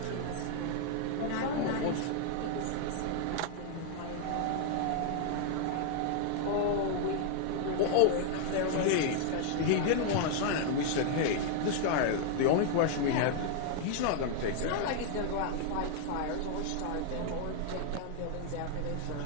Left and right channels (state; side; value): different; both; correlation 0.00